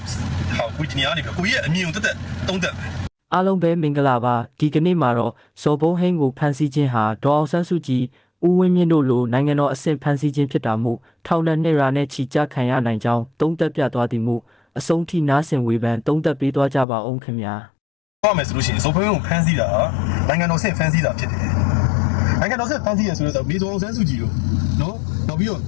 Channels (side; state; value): right; drops out; at 16.9 s